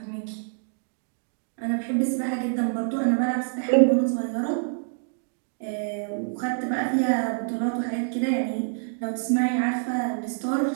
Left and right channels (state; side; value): silent; left; digital silence